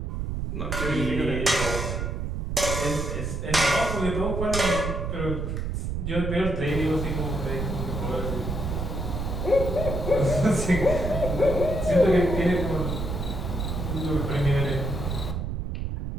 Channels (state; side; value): noise; right; rumble, 3 dB below the sound